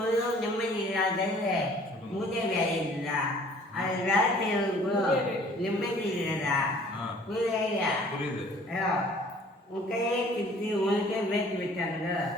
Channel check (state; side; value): normal; both; correlation 0.53